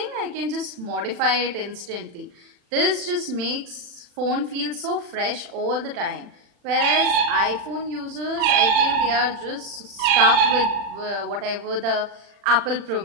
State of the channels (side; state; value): left; late; 40 ms